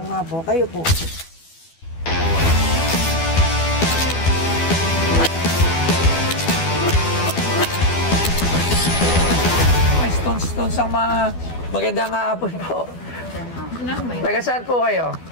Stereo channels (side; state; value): right; late; 12 ms